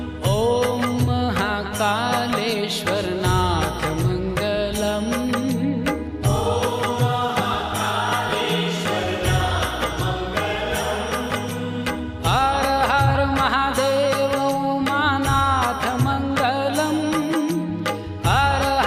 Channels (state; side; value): identical; both; correlation 1.00